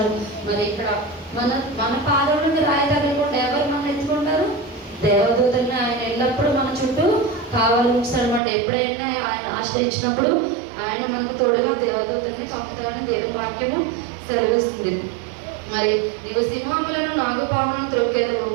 మరి ఇక్కడ మన పాదములకు రాయి తగలకుండా ఎవరు మనం ఎత్తుకుంటారు? దేవదూతల్ని ఆయన ఎల్లప్పుడూ మన చుట్టూ కావాలి ఉంచుతాడు అన్నమాట. ఎప్పుడైనా ఆయన ఆశ్రయించినప్పుడు ఆయన మనకు తోడుగా దేవదూతల్ని పంపుతాడని దేవుని వాక్యము సెలవిస్తుంది. మరి నీవు సింహములను నాగుపాములను త్రొక్కెదవు,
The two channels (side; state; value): left; drops out; at 8.4 s